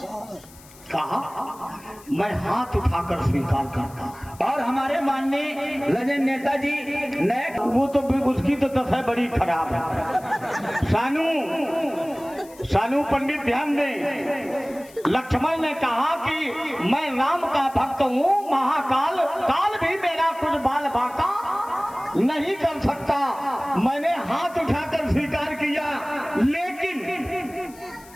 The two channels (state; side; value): noise; left; hiss, 23 dB below the sound